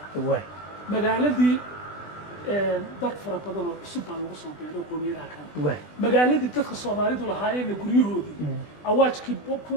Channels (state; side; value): late; right; 20 ms